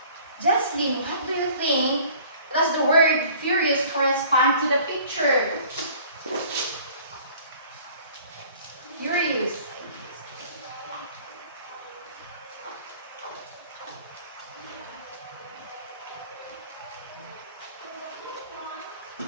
Jocelyn, what do you think does the word furious correspond to the picture? Furious.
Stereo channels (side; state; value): both; inverted; correlation -0.50